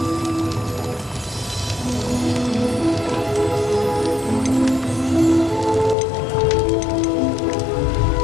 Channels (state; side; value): drops out; right; at 6.0 s